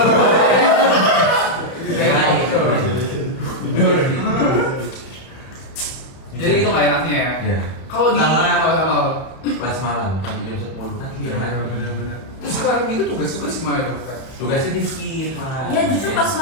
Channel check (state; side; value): late; right; 31 ms